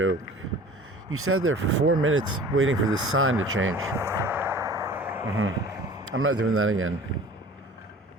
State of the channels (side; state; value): both; normal; correlation 0.44